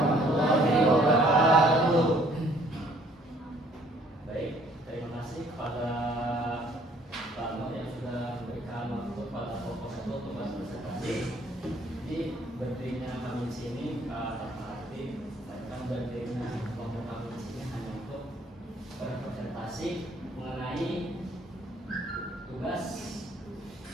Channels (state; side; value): normal; both; correlation 0.60